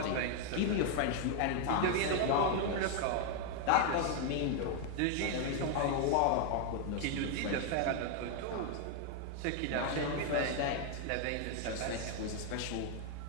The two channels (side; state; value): both; different; correlation 0.00